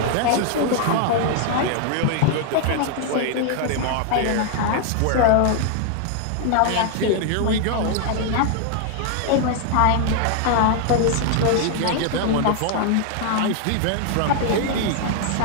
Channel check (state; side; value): different; both; correlation 0.00